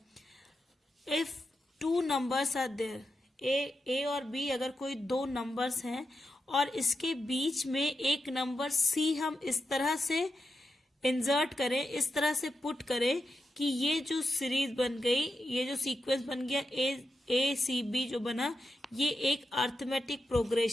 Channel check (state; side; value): normal; both; correlation 0.87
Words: If two numbers are there, A और बी, अगर कोई दो नंबर्स हैं और इसके बीच में एक नंबर सी हम इस तरह से इंसर्ट करें, इस तरह से पुट करें कि ये जो सीरीज बन गई, ये जो सीक्वेंस बन गया ए सी बी जो बना, ये एक अर्थमेटिक